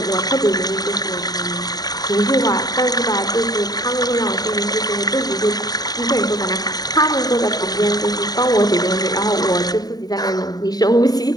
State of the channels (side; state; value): right; late; 0.19 ms